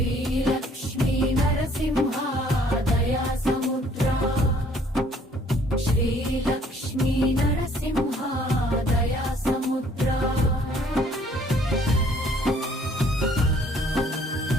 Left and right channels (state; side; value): normal; both; correlation 0.60